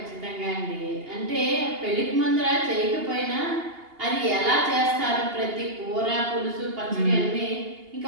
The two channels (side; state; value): left; late; 2.8 ms